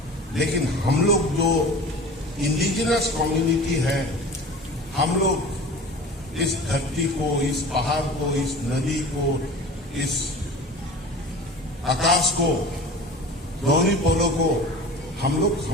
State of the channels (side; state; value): both; normal; correlation 0.37